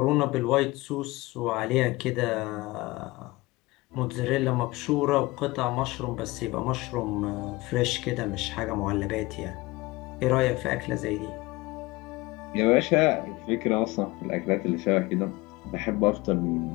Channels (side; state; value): right; quieter; 21.2 dB